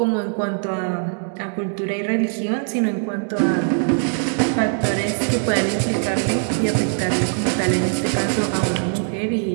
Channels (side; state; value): left; silent; 65 dB below the other